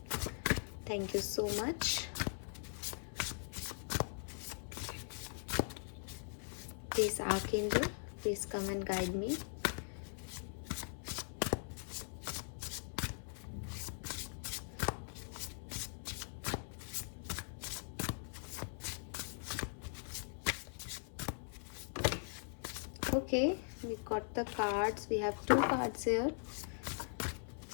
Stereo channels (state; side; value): silent; right; 51 dB below the other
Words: Thank you so much. Please Archangel, please come and guide me. Okay, we got the cards. We have two cards here.